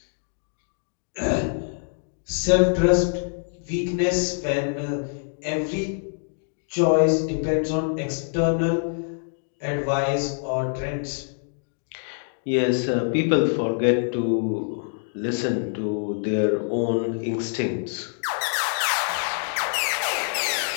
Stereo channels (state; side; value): silent; right; digital silence